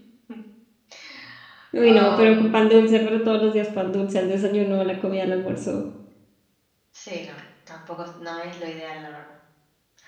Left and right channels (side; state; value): both; identical; correlation 1.00